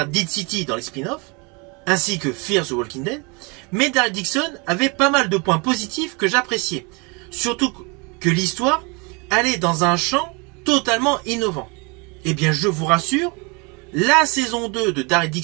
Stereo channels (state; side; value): quieter; left; 30.3 dB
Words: Dead City dans les spin-offs, ainsi que Fear the Walking Dead, mais Daryl Dixon avait pas mal de points positifs que j'appréciais. Surtout que l'histoire allait dans un champ totalement innovant. Eh bien, je vous rassure, la saison 2 de Daryl